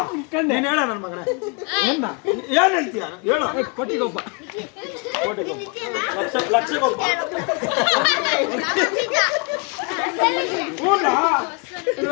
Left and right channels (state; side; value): quieter; right; 33.9 dB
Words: ನೀನು ಹೇಳ ನನ್ನ ಮಗನ ಏನ್ ಹೇಳ್ತೀಯ ಹೇಳು ಕೋಟಿಗೊಬ್ಬ ಲಕ್ಷಗೊಬ್ಬ